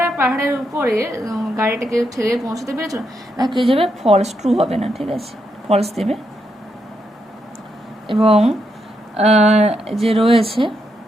পাহাড়ের উপরে গাড়িটাকে ঠেলে পৌঁছতে পেরেছিল না, কে যাবে ফলস, ট্রু হবে না, ঠিক আছে, ফলস দেবে। এবং যে রয়েছে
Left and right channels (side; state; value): both; normal; correlation 0.81